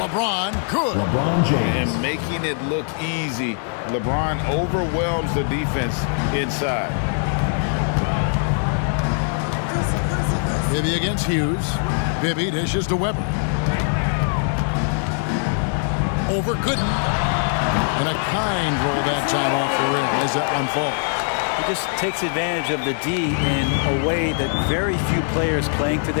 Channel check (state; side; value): silent; right; 62 dB below the other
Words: good. LeBron James. And making it look easy. LeBron overwhelms the defense inside. Bibby against Hughes. Bibby dishes to Weber. Over Gooden. And a kind roll that time off the rim as that one falls. He just takes advantage of the D in a way that very few players playing